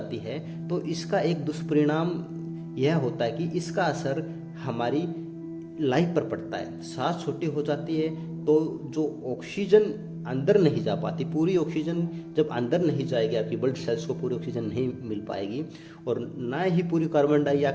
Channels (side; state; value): both; identical; correlation 1.00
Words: है तो इसका एक दुष्परिणाम यह होता है कि इसका असर हमारी लाइफ पर पड़ता है। सांस छोटी हो जाती है तो जो ऑक्सीजन अंदर नहीं जा पाती, पूरी ऑक्सीजन जब अंदर नहीं जाएगी, आपकी ब्लड सेल्स को पूरी ऑक्सीजन नहीं मिल पाएगी और ना ही पूरी कार्बन